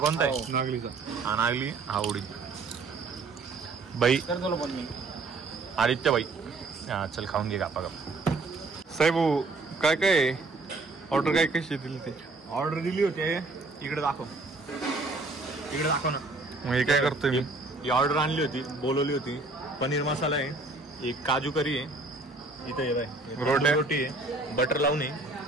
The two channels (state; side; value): quieter; left; 3.5 dB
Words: आहे नागलीचा हा नागली हा उडीद बाई आदित्य बाई हा चल खाऊन घे गापा गप साहेब काय काय ऑर्डर काय कशी दिली ते ऑर्डर दिली होती इकडे दाखव ना मग हे काय करतोय मी ही ऑर्डर आणली होती बोलवली होती पनीर मसाला आहे एक काजू करी आहे इथं ये बाय रोटी आहे बटर लावून आहे